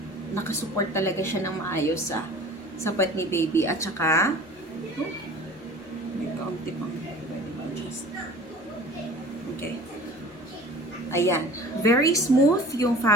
nakasupport talaga siya ng maayos sa puwet ni baby. At saka, may kaunti pang pwede ma-adjust. Okay. Ayan. Very smooth yung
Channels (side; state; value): both; normal; correlation 0.43